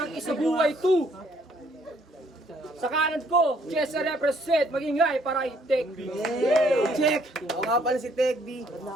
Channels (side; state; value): both; normal; correlation 0.65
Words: Isabuhay 2. Sa kanan ko, Chesa represent, magingay para kay Tech B. Check! Ako nga pala si Tech B,